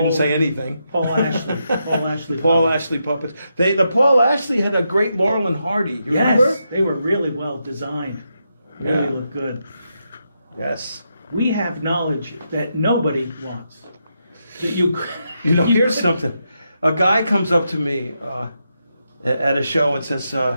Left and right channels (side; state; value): both; inverted; correlation -0.83